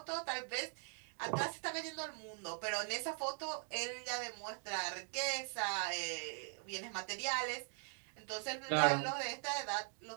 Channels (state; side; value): silent; left; 50 dB below the other